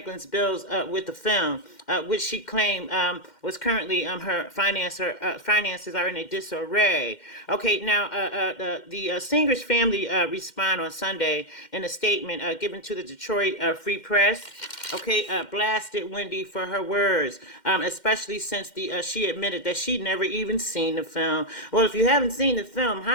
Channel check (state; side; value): late; right; 2.1 ms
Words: bills with the film, which she claimed was currently her finances are in a disarray. Okay, now the singer's family respond on Sunday in a statement given to the Detroit Free Press. Okay, blasted Wendy for her words, especially since she admitted that she'd never even seen the film. Well, if you haven't seen the film,